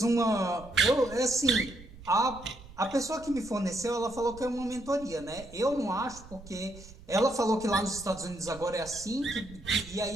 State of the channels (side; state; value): right; noise; rumble, 18 dB below the sound